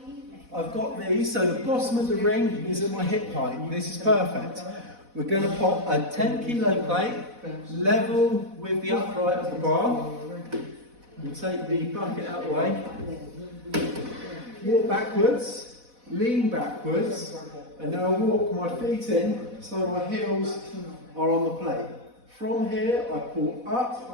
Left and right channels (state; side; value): late; left; 4.1 ms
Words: I've got these, so the bottom of the ring is at my hip height. This is perfect. We're going to pop a 10 kilo plate, level with the upright of the bar. We'll take the bucket out of the way. Walk backwards, lean backwards, and now I'll walk my feet in so my heels are on the plate. From here, I pull